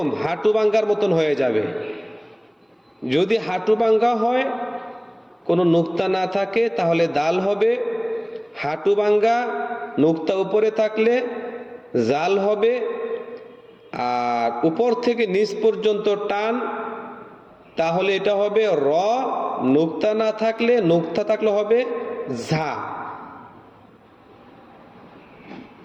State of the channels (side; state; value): both; identical; correlation 1.00